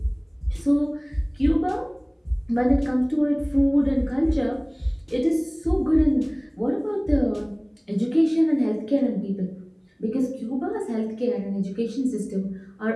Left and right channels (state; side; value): identical; both; correlation 1.00